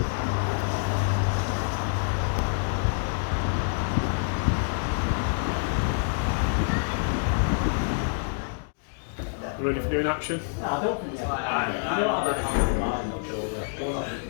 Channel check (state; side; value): silent; right; digital silence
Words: Ready for doing action? I don't think it's like I don't have that on my mind, I'm sure.